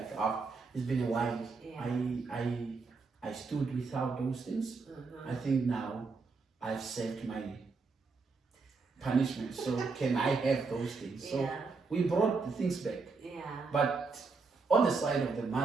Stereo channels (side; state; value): left; quieter; 4.4 dB